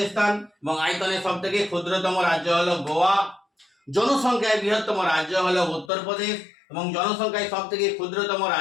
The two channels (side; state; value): right; drops out; at 5.9 s